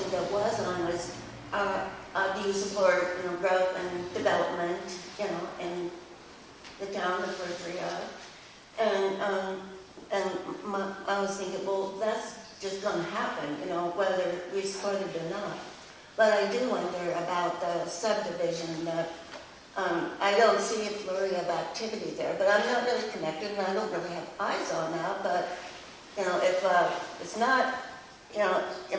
that was on was, do you support, growth and development, in the town of Berkeley? And I was thinking, well, that's just going to happen, whether we support it or not. But I do wonder about the subdivision that I don't see a flurry of activity there, but I'm not really connected and I don't really have eyes on that. But, if it's not, it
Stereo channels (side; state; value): both; identical; correlation 1.00